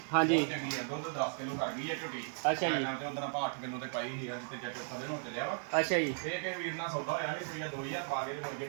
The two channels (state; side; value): silent; left; 54 dB below the other